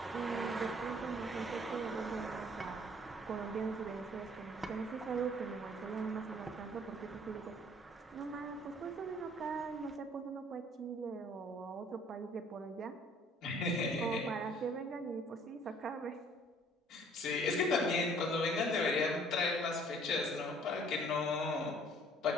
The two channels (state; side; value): normal; both; correlation 0.57